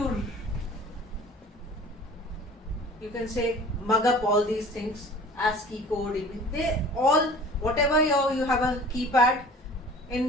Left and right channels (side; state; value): both; normal; correlation 0.45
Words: you can say, mug up all these things. ASCII code, they all, whatever you have a keypad